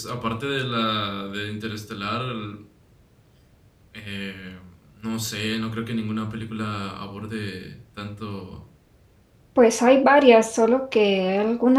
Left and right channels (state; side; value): identical; both; correlation 1.00